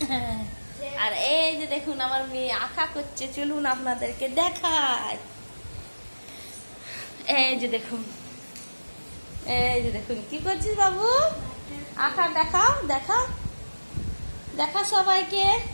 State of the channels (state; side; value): inverted; both; correlation -1.00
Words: আর এই যে দেখুন আমার মেয়ে আঁকা করছে, চলুন আপনাদেরকে দেখায়। এই যে দেখুন, এই যে দেখুন কি করছিস বাবু? আঁকা দেখাও, দেখাও, দেখা সবাইকে,